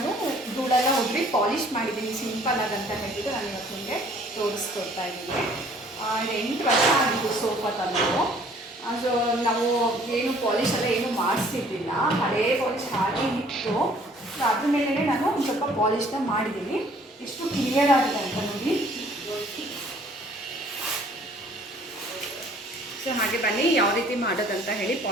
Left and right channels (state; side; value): normal; both; correlation 0.57